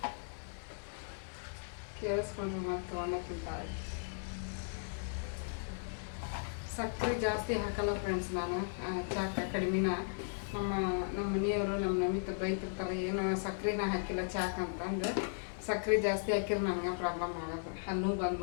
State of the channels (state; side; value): silent; right; digital silence